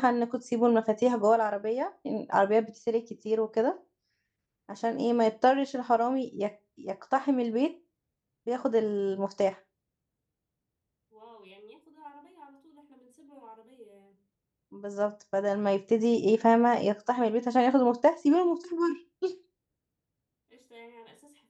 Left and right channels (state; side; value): identical; both; correlation 1.00